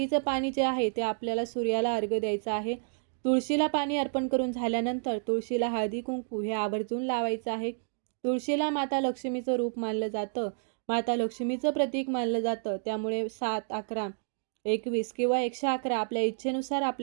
पाणी जे आहे ते आपल्याला सूर्याला अर्घ्य द्यायचं आहे. तुळशीला पाणी अर्पण करून झाल्यानंतर तुळशीला हळदी कुंकू हे आवर्जून लावायचं आहे. तुळशीला माता लक्ष्मीचं रूप मानलं जातं. माता लक्ष्मीचं प्रतीक मानलं जातं. त्यामुळे 7, 11, 21 किंवा 111 आपल्या इच्छेनुसार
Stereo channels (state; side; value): silent; left; digital silence